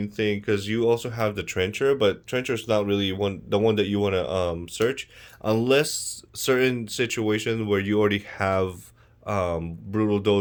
thing, because you also have the Trencher, but Trencher is not really the one that you want to search, unless certain situations where you already have Brutal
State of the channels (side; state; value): both; identical; correlation 1.00